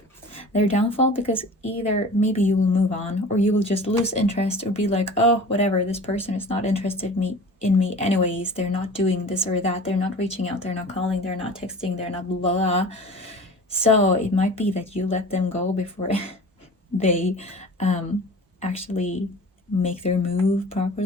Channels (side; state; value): both; normal; correlation 0.40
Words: their downfall, because either maybe you will move on, or you will just lose interest or be like, oh, whatever, this person is not interested in me anyways. They're not doing this or that. They're not reaching out. They're not calling. They're not texting. They're not blah, blah. So it might be that you let them go before they actually make their move